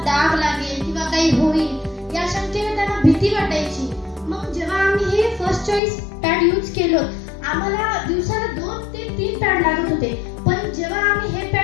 डाग लागेल किंवा काही होईल या शंकेने त्यांना भीती वाटायची. मग जेव्हा आम्ही हे फर्स्ट चॉईस पॅड यूज केलो आम्हाला दिवसाला 2 ते 3 पॅड लागत होते, पण जेव्हा आम्ही हे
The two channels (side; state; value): right; drops out; at 5.8 s